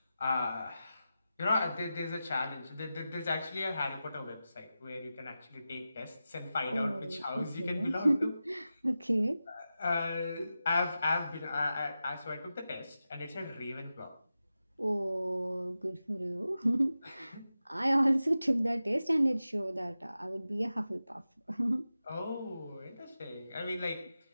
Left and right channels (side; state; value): both; inverted; correlation -0.92